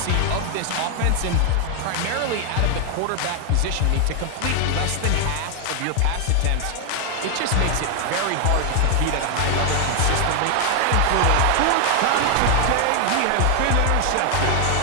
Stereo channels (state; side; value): different; both; correlation 0.00